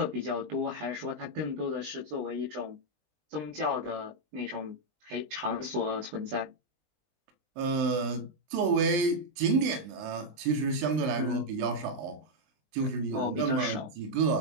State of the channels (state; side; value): late; left; 20 ms